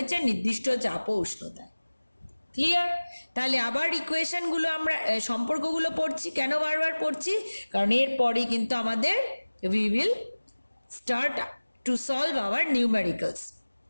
নির্দিষ্ট চাপ ও উষ্ণতায়। ক্লিয়ার? তাহলে আবার ইকুয়েশনগুলো আমরা সম্পর্কগুলো পড়ছি, কেন বারবার পড়ছি, কারণ এরপরে কিন্তু আমাদের we will start to solve our numericals,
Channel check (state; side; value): inverted; both; correlation -1.00